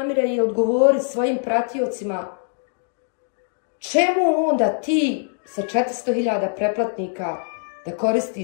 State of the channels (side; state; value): right; silent; 64 dB below the other